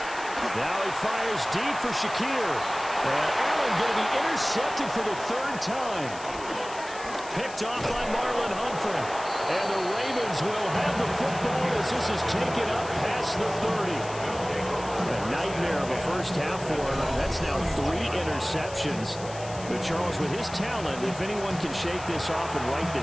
Now he fires deep for Shakir. And Allen going to be intercepted for the 3rd time. Picked off by Marlon Humphrey. And the Ravens will have the football as this is taken up past the 30. A nightmare of a first half for him. That's now 3 interceptions. But Charles, with his talent, if anyone can shake this off and right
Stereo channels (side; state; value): left; noise; hiss, 15 dB below the sound